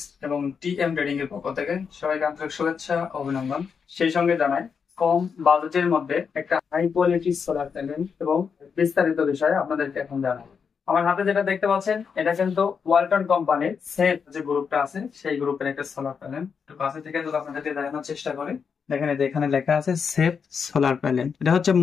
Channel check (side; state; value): right; quieter; 6.2 dB